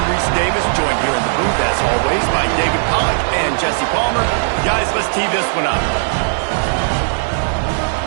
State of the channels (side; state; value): left; silent; digital silence